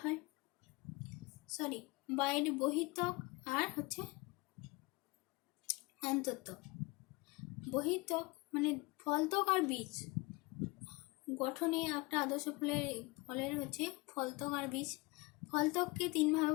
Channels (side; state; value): right; quieter; 24.8 dB